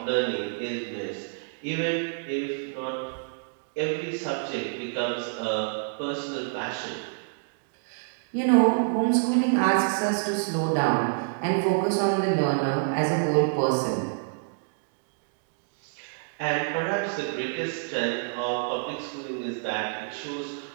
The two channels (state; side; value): silent; left; digital silence